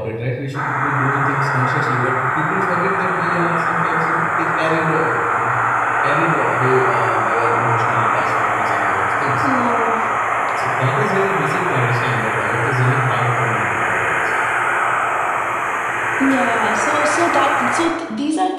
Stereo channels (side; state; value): both; identical; correlation 1.00